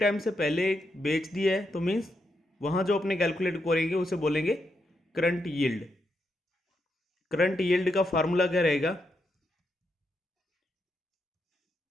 से पहले बेच दिया है तो मीन्स वहाँ जो अपने कैलकुलेट करेंगे उसे बोलेंगे करंट यील्ड। करंट यील्ड का फार्मूला क्या रहेगा,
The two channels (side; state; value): both; normal; correlation 0.82